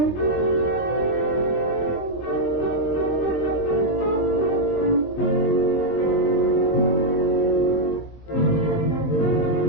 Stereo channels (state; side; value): late; right; 21 ms